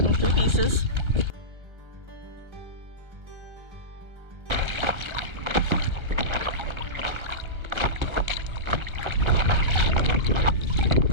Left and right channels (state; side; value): late; left; 1.3 ms